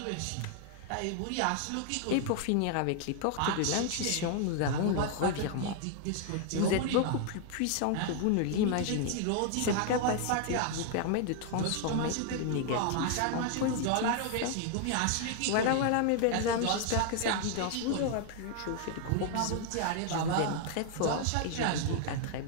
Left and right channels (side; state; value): both; different; correlation 0.00